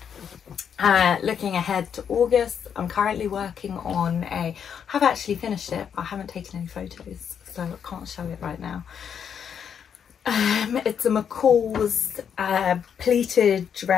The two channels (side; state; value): right; quieter; 7.8 dB